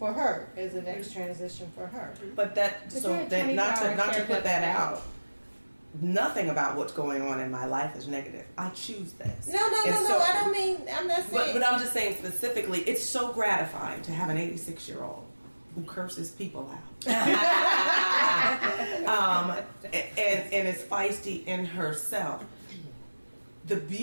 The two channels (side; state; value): both; inverted; correlation -1.00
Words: her as the next transition for her. But not to put that out. Nothing about what's going on in my life is negative. I choose this. No. I don't mean. I'm not saying. But I'm just saying specifically, it's so gratifying to have an 86-year-old who curses people out, and is feisty in herself. The